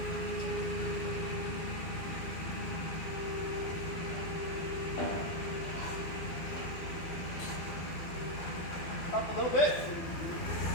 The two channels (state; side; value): late; right; 12 ms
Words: Up a little bit.